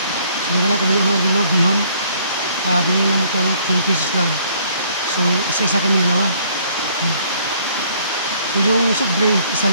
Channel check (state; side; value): inverted; both; correlation -0.62